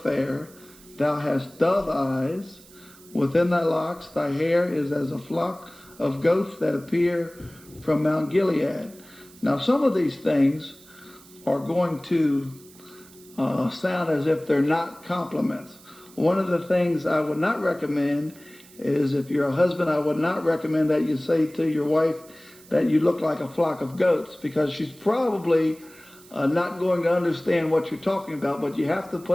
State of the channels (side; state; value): right; noise; hiss, 23 dB below the sound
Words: fair. Thou hast dove eyes. Within thy locks, thy hair is as a flock of goats that appear from Mount Gilead. Now, some of these things are going to sound as if they're not compliments. One of the things I would not recommend is, if you're a husband, I would not recommend that you say to your wife that you look like a flock of goats, because she's probably not going to understand what you're talking about. But you have to